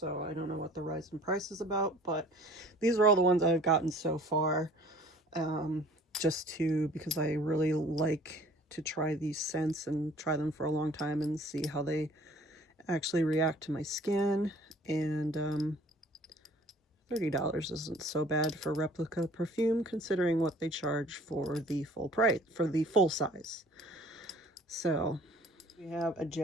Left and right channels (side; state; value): both; normal; correlation 0.51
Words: I don't know what the rise in price is about, but these are all the ones I've gotten so far. Because I really like to try these scents and try them for a long time and see how they actually react to my skin. And $30 isn't so bad for Replica perfume, considering what they charge for the full price, for the full size. So we have a